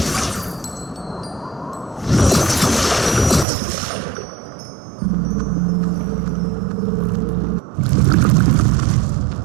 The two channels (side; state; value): left; drops out; at 3.5 s